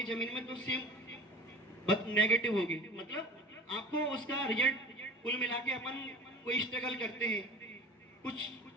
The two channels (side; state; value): both; normal; correlation 0.38